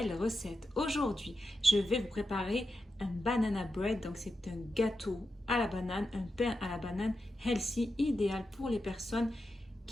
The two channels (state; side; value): normal; both; correlation 0.89